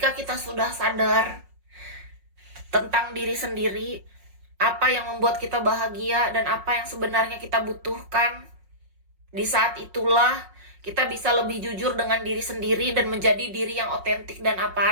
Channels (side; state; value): left; late; 5.5 ms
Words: kita sudah sadar tentang diri sendiri, apa yang membuat kita bahagia dan apa yang sebenarnya kita butuhkan, di saat itulah kita bisa lebih jujur dengan diri sendiri dan menjadi diri yang otentik dan